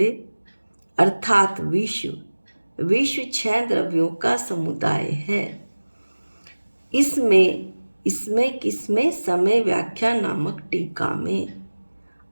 अर्थात विश्व 6 द्रव्यों का समुदाय है। इसमें किसमें समय व्याख्या नामक टीका में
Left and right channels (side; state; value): both; inverted; correlation -1.00